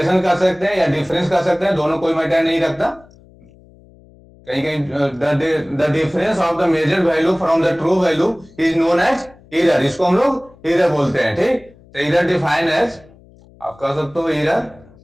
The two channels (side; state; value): left; noise; hum, 26 dB below the sound